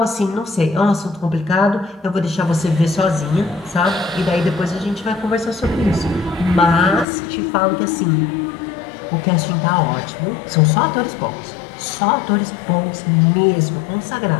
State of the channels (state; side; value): drops out; right; at 7.1 s